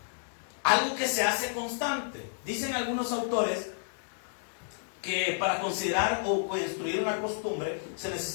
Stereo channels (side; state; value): right; silent; digital silence